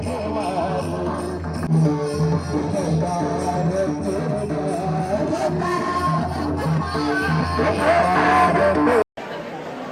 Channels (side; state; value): both; identical; correlation 1.00